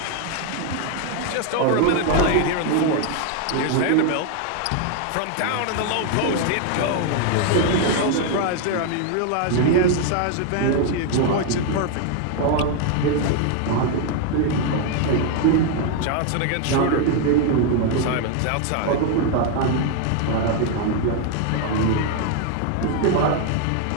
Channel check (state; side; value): different; both; correlation 0.01